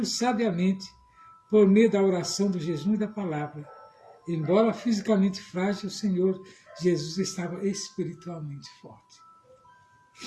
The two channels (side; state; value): both; identical; correlation 1.00